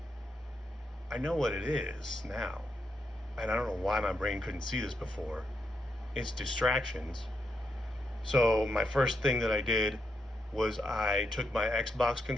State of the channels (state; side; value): normal; both; correlation 0.81